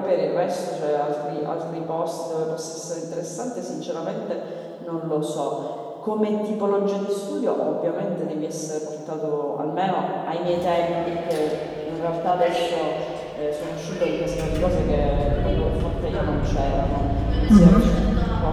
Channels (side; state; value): both; identical; correlation 1.00